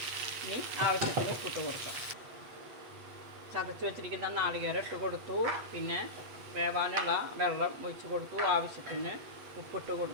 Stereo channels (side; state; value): left; late; 8.2 ms